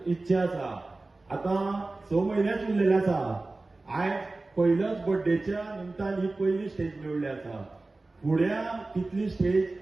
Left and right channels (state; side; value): quieter; left; 3.2 dB